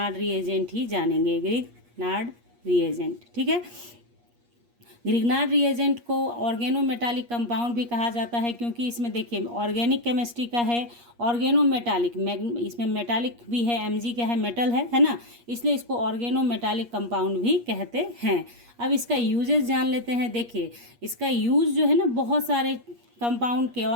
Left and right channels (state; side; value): late; left; 8.5 ms